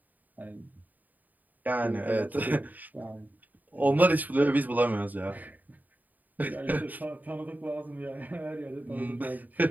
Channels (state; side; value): late; left; 0.083 ms